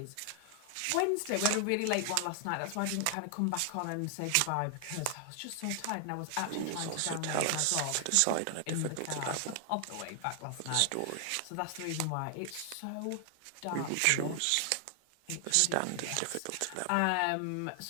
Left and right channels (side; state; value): both; different; correlation 0.00